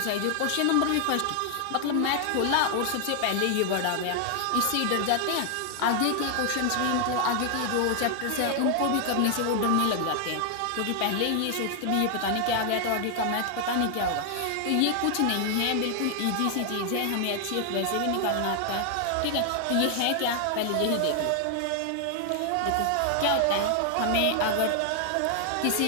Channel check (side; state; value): both; different; correlation 0.00